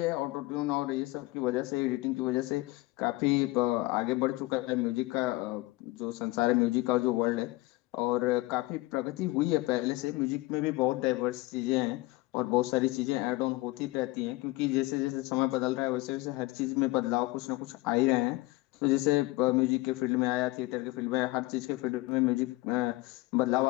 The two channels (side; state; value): right; quieter; 20.9 dB